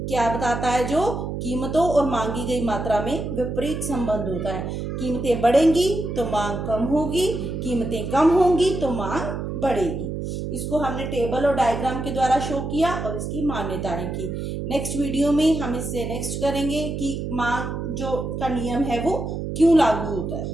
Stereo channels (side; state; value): right; noise; hum, 4 dB below the sound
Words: क्या बताता है, जो कीमतों और मांगी गई मात्रा में विपरीत संबंध होता है। कीमतें बढ़ेंगी तो मांग कम होगी, कीमतें कम होंगी तो मांग बढ़ेगी। इसको हमने टेबल और डायग्राम के द्वारा शो किया और इसकी मान्यताएं की। नेक्स्ट वीडियो में हम इससे नेक्स्ट करेंगे कि मांग जो का नियम है वो क्यों लागू होता है।